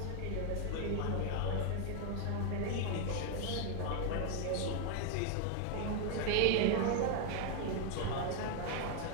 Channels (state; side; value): different; both; correlation 0.00